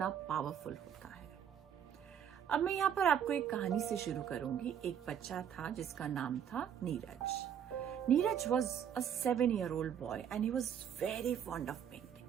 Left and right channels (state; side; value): quieter; left; 8.8 dB